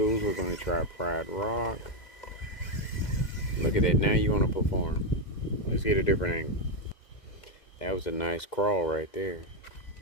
we're going to try Pride Rock. Look at that, now you want to perform. Let's get a different angle. That was a nice crawl right there.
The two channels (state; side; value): late; right; 2.0 ms